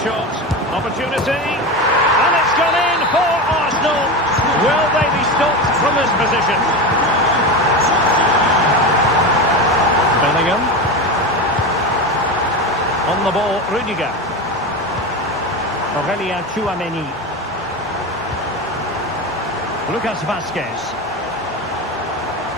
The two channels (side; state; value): both; normal; correlation 0.22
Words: shot. Opportunity. And it's gone in for Arsenal. Will they be stopped from this position? Bellingham. On the ball, Rudiger. Aurelien Tchouaméni. Lucas Vazquez.